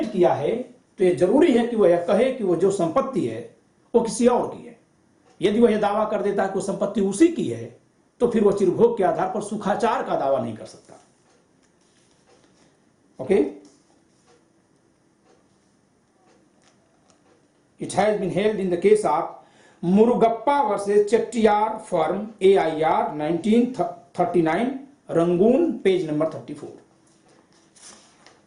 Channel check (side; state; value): both; identical; correlation 1.00